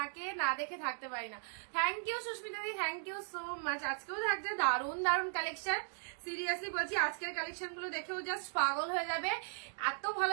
না দেখে থাকতে পারি না। থ্যাংক ইউ সুস্মিতা দি, থ্যাংক ইউ সো মাচ। আজকেও থাকছে দারুণ দারুণ কালেকশন। সিরিয়াসলি বলছি, আজকের কালেকশন গুলো দেখেও জাস্ট পাগল হয়ে যাবে। এত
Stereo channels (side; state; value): left; silent; digital silence